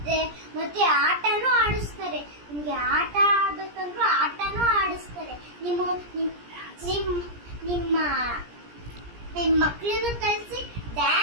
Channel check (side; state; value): left; late; 17 ms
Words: ಮತ್ತೆ ಆಟನೂ ಆಡಿಸ್ತಾರೆ. ನಿಮ್ಗೆ ಆಟ ಆಡ್ಬೇಕಂದ್ರೂ ಆಟನೂ ಆಡಿಸ್ತಾರೆ. ನಿಮ್ಮ ಮಕ್ಕಳನ್ನು ಕಳಿಸಿ